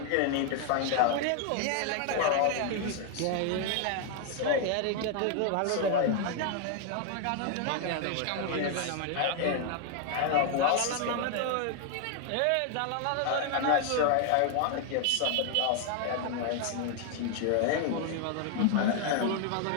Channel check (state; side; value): different; both; correlation 0.00